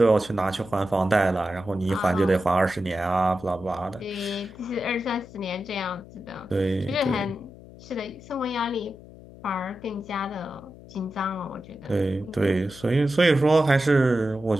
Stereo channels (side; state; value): left; noise; hum, 19 dB below the sound